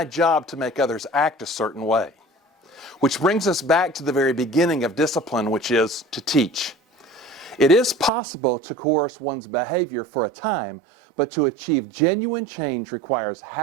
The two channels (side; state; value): left; drops out; at 8.1 s